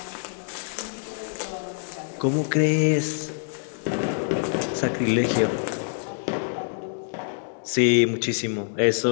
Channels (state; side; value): silent; right; digital silence